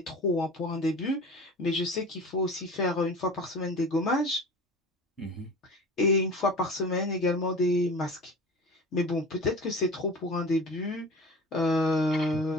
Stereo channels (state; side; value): normal; both; correlation 0.37